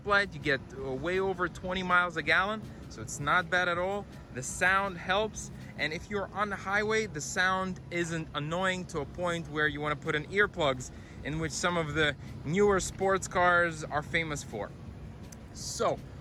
you get way over 20 miles a gallon, so it's not bad at all. The sound helps, and if you're on the highway, the sound isn't annoying to a point where you want to put in earplugs, in which some of the newer sports cars are famous for. So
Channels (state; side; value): identical; both; correlation 1.00